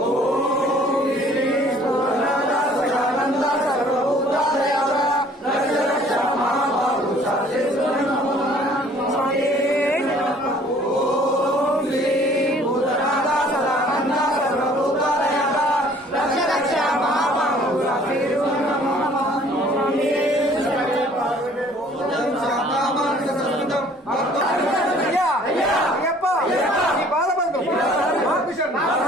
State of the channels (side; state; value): both; normal; correlation 0.55